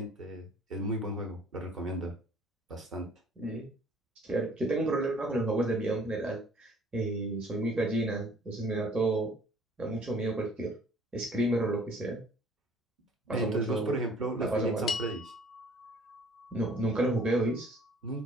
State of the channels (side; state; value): both; normal; correlation 0.55